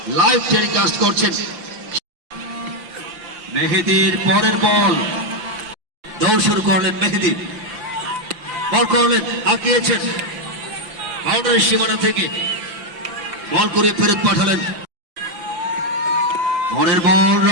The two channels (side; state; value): left; late; 5.9 ms